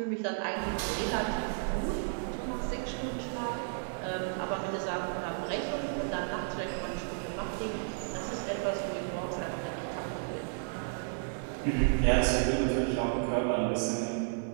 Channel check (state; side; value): silent; left; 56 dB below the other